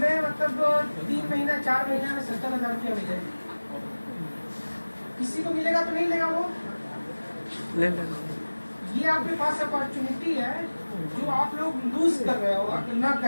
मतलब 3 महीना 4 महीने में 70,000 रुपया मिले? किसी को मिलेगा तो नहीं लेगा वो? ले ले। ये आपके पास अपॉर्चुनिटी है जो आप लोग लूज कर रहे हो ना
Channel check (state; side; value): inverted; both; correlation -1.00